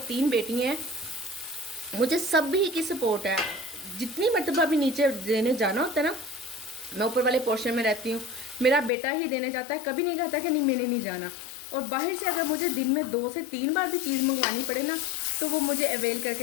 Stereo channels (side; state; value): right; drops out; at 8.9 s